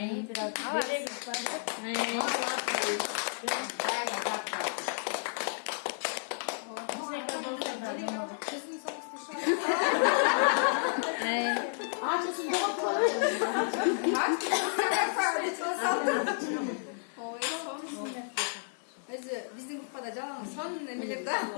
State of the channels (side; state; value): right; silent; digital silence